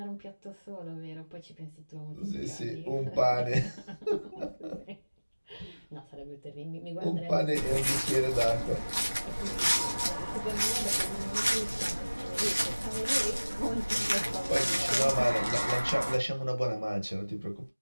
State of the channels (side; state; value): both; inverted; correlation -1.00